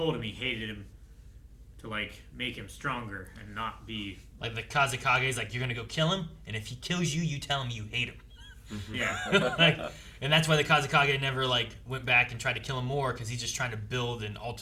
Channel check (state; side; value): identical; both; correlation 1.00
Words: him he hated him to like make him stronger and not be Like the Kazekage is like, you're gonna go kill him, and if he kills you, you tell him you hate him. yeah. Like, and that's why the Kazekage never like went back and tried to kill him more, because he's just trying to build an